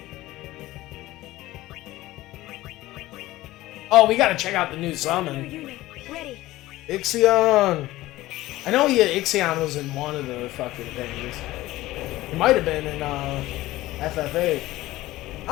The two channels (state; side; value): quieter; right; 17.2 dB